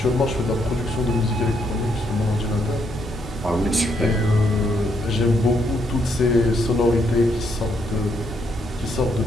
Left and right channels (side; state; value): both; normal; correlation 0.75